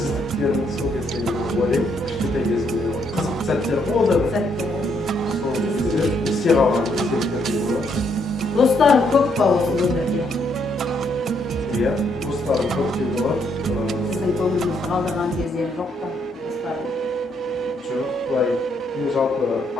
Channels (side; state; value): both; normal; correlation 0.73